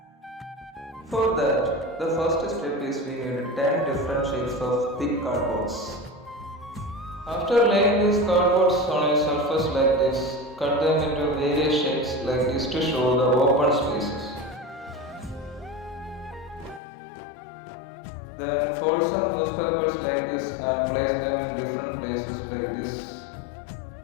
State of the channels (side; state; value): right; drops out; at 16.8 s